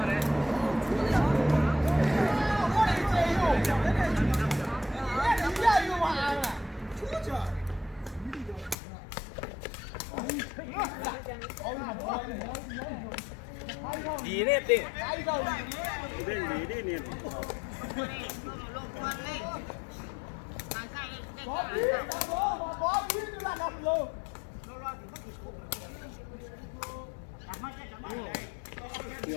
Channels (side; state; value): right; drops out; at 8.8 s